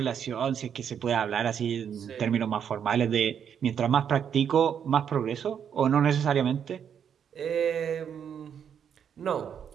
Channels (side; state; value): left; quieter; 8.1 dB